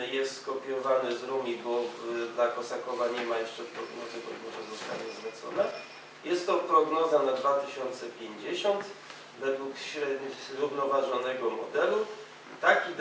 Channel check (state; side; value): identical; both; correlation 1.00